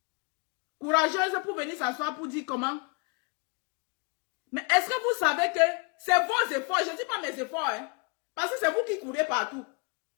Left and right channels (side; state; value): right; quieter; 30.5 dB